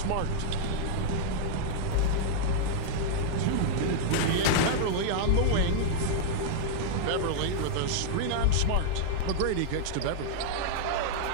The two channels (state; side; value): different; both; correlation -0.01